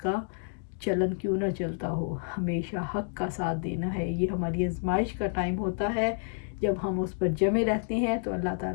چلن کیوں نہ چلتا ہو. ہمیشہ حق کا ساتھ دینا ہے. یہ ہماری آزمائش کا ٹائم ہوتا ہے. جب ہم اس پر جمے رہتے ہیں تو اللہ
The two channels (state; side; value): silent; right; digital silence